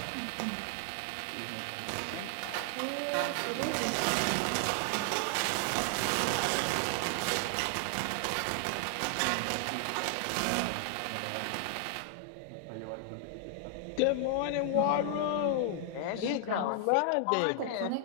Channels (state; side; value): different; both; correlation 0.00